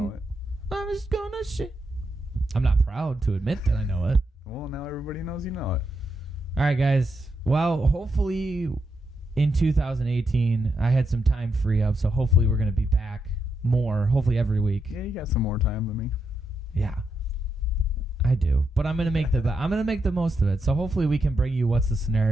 it. I'm just gonna shit. I'm not proud to admit that I know it. Well, now everybody knows you know it. All right, guys. Well, hopefully in 2018, I had some time free up, so hopefully we're going to be back more, hopefully every week. Yeah, you got some more time than me. Yeah, I do. But I'm gonna make the most of it. So hopefully we can bring you What's the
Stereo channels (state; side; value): normal; both; correlation 0.83